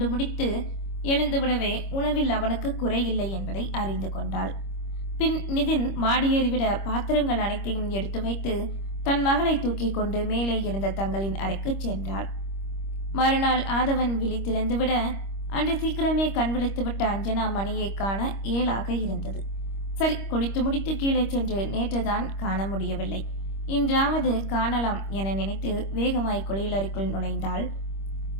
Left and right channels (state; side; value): late; right; 25 ms